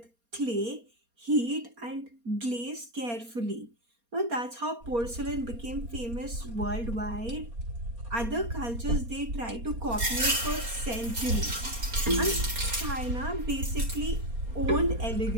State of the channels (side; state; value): left; late; 4.3 ms